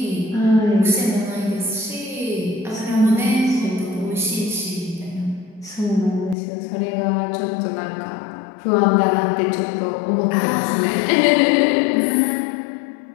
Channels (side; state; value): right; drops out; at 6.4 s